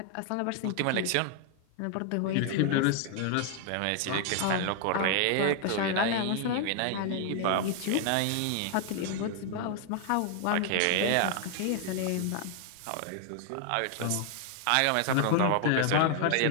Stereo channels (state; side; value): different; both; correlation 0.00